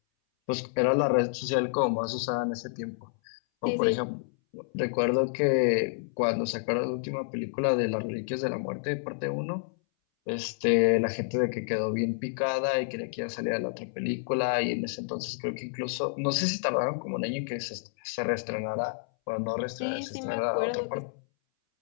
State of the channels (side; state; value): right; silent; 58 dB below the other